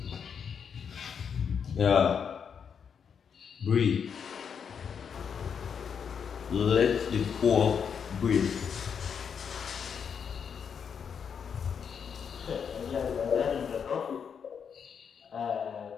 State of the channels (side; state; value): right; quieter; 7.0 dB